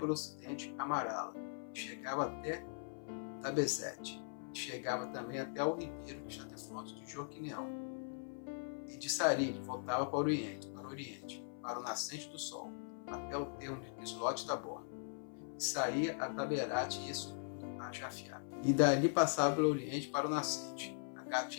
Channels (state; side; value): silent; right; 51 dB below the other